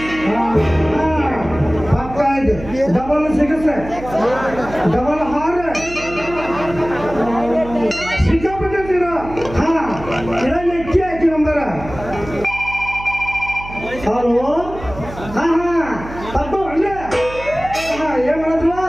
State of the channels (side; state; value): right; noise; hum, 13 dB below the sound